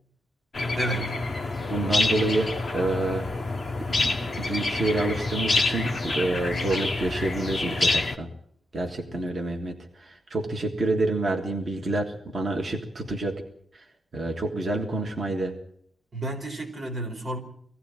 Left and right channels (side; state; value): both; normal; correlation 0.81